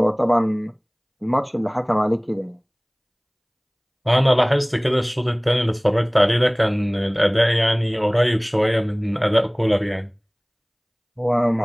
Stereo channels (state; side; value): identical; both; correlation 1.00